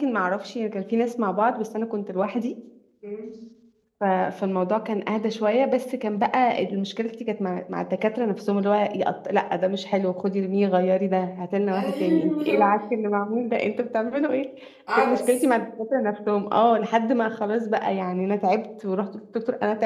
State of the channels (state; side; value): identical; both; correlation 1.00